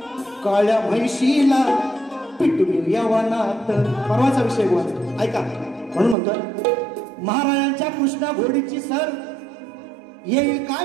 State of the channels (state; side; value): drops out; left; at 6.2 s